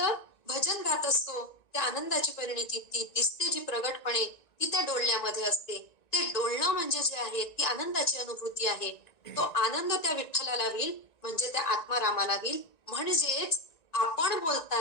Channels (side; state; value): right; late; 1.9 ms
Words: भजन गात असतो, त्या आनंदाची परिणिती ती दिसते जी प्रगटपणे, ती त्या डोलण्यामध्ये असते. ते डोलणं म्हणजे जे आहे ती आनंदाची अनुभूती आहे. तो आनंद त्या विठ्ठलाला होईल, म्हणजे त्या आत्मारामाला होईल. म्हणजेच आपण